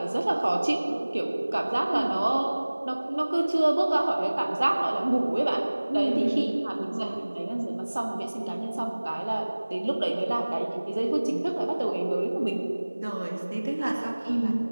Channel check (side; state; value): both; inverted; correlation -1.00